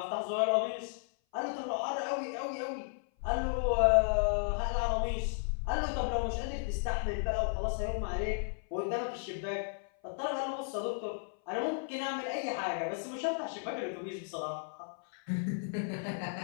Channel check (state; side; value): silent; right; 55 dB below the other